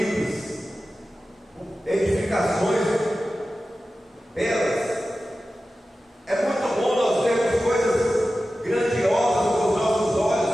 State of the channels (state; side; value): normal; both; correlation 0.94